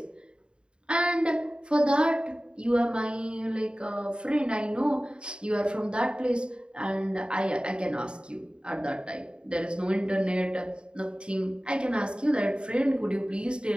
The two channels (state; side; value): late; left; 0.052 ms